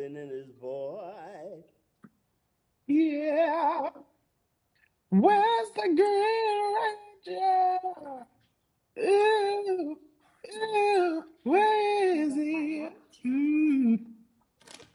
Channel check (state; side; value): identical; both; correlation 1.00